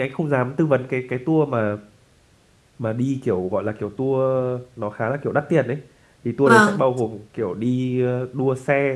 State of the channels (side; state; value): both; identical; correlation 1.00